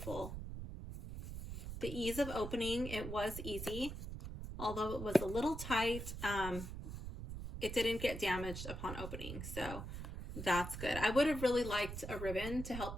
The ease of opening, it was easy. Although it was a little tight, it didn't get damaged upon opening. So that's good. I would have really liked a ribbon to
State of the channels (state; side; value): noise; right; rumble, 7 dB below the sound